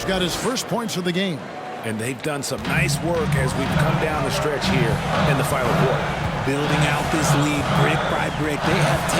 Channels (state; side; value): identical; both; correlation 1.00